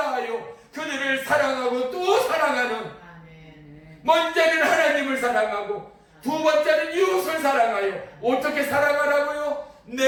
그들을 사랑하고 또 사랑하는, 먼저는 하나님을 사랑하고 두 번째는 이웃을 사랑하여 어떻게 사랑하라고요?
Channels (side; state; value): both; identical; correlation 1.00